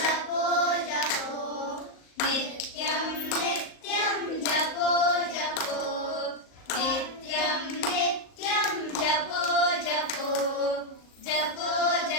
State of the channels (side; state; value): right; late; 38 ms